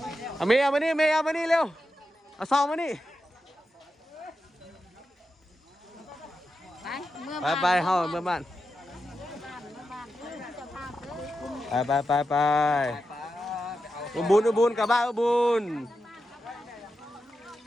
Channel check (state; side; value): normal; both; correlation 0.89